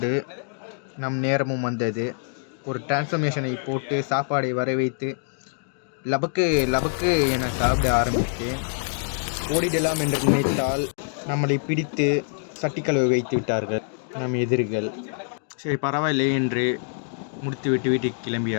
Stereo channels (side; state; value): right; silent; digital silence